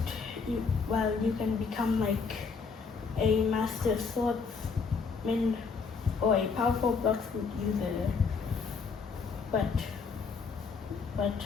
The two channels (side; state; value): right; quieter; 5.2 dB